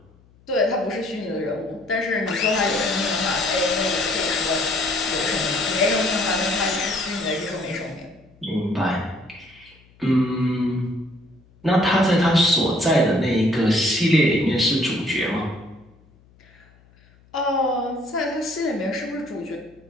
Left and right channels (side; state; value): left; noise; hum, 29 dB below the sound